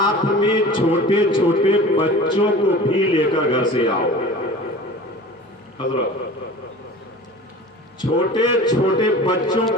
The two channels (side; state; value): both; normal; correlation 0.39